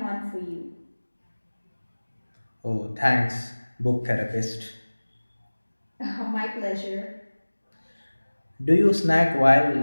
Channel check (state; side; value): inverted; both; correlation -1.00